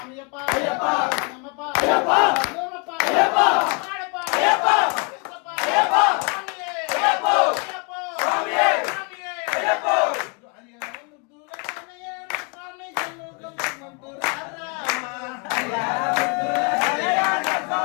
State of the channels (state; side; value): quieter; right; 33.9 dB